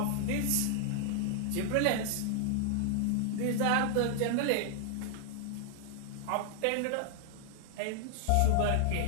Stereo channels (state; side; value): different; both; correlation 0.00